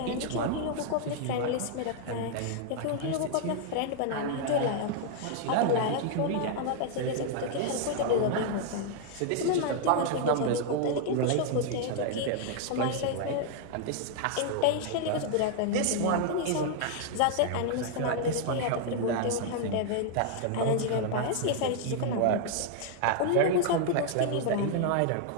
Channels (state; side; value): different; both; correlation 0.00